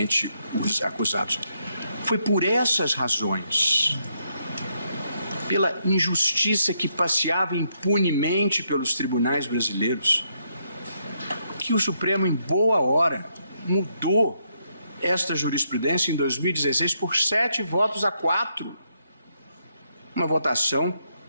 os acusados. Foi por essas razões, pela injustiça que passeava impunemente pelos tribunais brasileiros, que o Supremo, em boa hora, mudou esta jurisprudência em 2016 por 7-4. Uma votação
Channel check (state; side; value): inverted; both; correlation -0.77